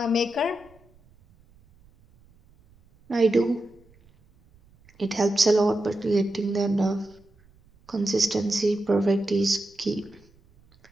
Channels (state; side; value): noise; right; rumble, 30 dB below the sound